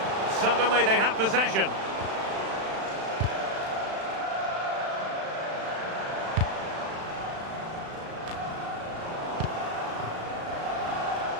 Suddenly they have possession.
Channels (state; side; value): late; left; 36 ms